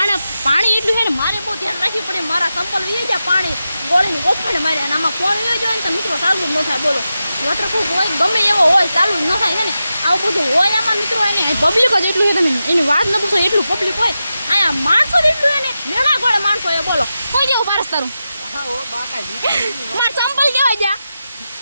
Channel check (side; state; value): both; inverted; correlation -0.91